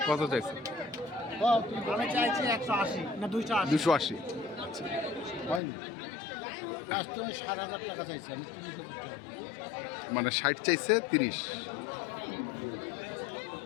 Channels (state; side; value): drops out; right; at 5.6 s